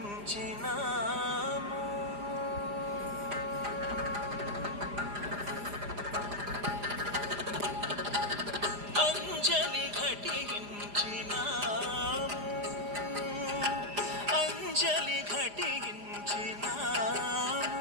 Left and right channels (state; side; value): late; left; 4.9 ms